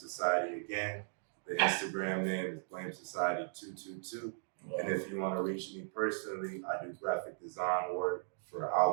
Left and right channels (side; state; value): left; silent; digital silence